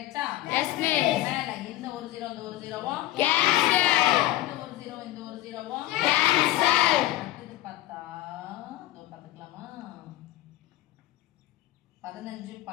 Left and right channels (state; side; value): quieter; right; 15.7 dB